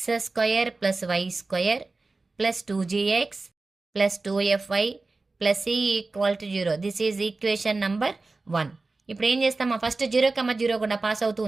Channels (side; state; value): left; quieter; 3.5 dB